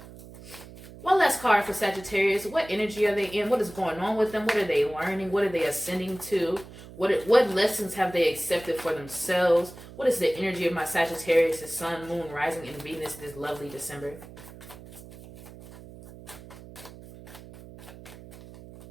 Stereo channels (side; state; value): right; noise; hum, 17 dB below the sound